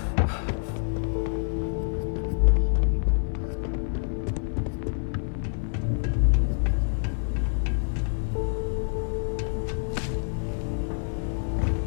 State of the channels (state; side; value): silent; right; digital silence